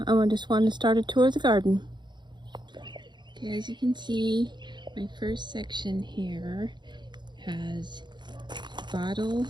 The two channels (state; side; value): late; left; 0.22 ms